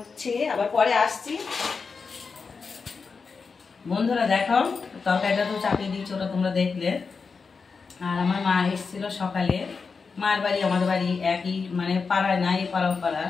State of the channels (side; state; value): right; quieter; 5.0 dB